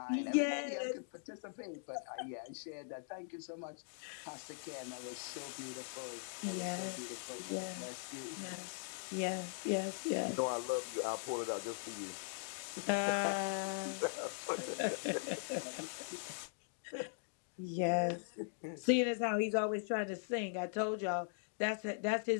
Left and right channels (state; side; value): silent; right; digital silence